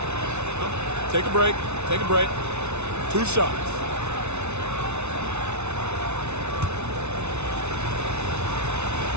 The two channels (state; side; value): late; left; 0.81 ms